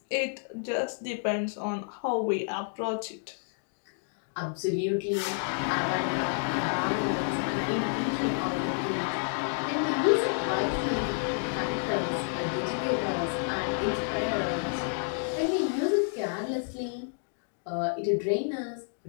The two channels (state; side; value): silent; right; digital silence